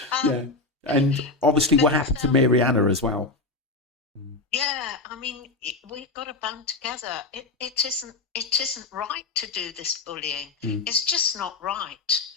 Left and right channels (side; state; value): right; quieter; 3.4 dB